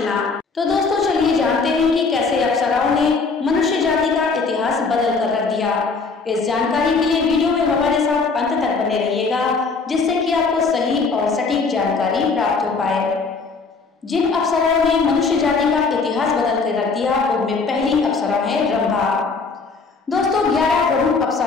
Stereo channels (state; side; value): quieter; right; 4.4 dB